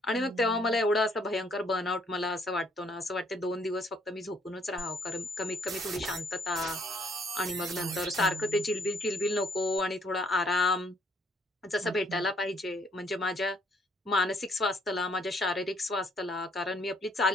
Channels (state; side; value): normal; both; correlation 0.66